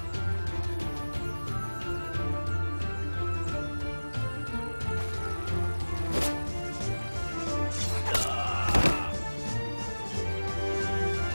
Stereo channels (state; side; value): inverted; both; correlation -1.00